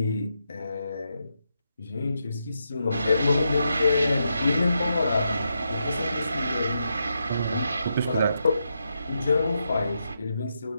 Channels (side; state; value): both; inverted; correlation -0.84